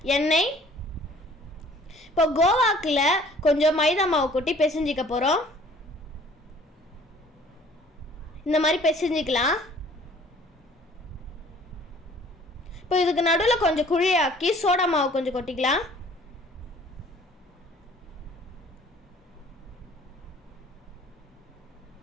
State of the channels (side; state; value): both; normal; correlation 0.54